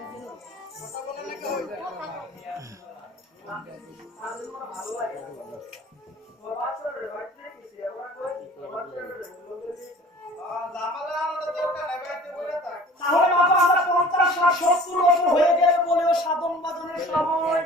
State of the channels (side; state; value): both; normal; correlation 0.46